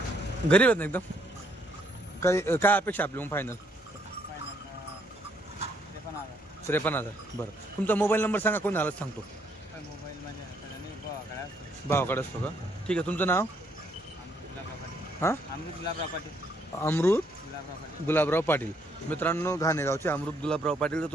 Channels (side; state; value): both; normal; correlation 0.70